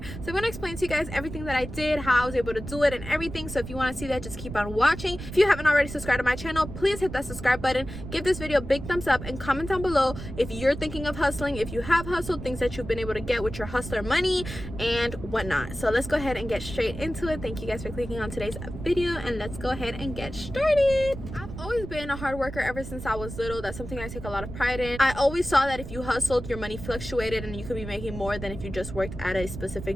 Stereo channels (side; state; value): right; noise; rumble, 10 dB below the sound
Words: So I'm going to explain to you guys everything that I did, how I was able to do it and everything. So if you want to see that, just keep on watching. If you haven't already subscribed to my channel, please hit that subscribe button, give this video a big thumbs up, and comment down below if you're thinking of hustling, if you have hustled, things that you've been able to get with your hustler money and whatnot. So let's go ahead and get straight into it. Thank you guys for clicking on today's video, and let's go ahead and get started. I've always been a hard worker ever since I was little. That's something I take a lot of pride in. I always saw that if you hustled, your money fluctuated and you could be making more than if you just worked at a